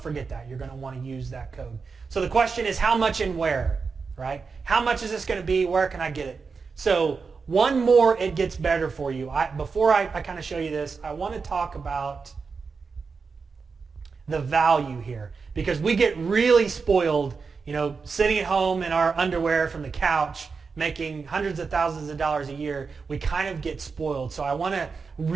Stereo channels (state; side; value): quieter; left; 5.0 dB